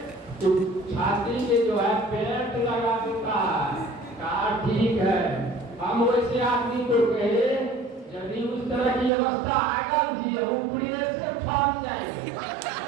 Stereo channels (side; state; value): left; drops out; at 9.1 s